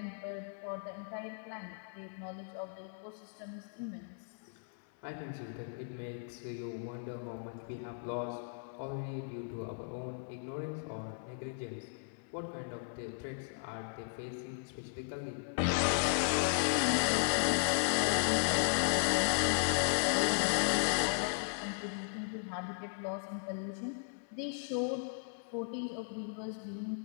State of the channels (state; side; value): silent; right; 53 dB below the other